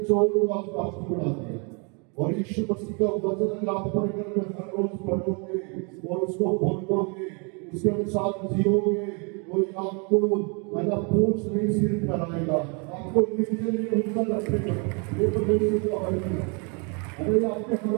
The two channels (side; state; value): left; quieter; 34.3 dB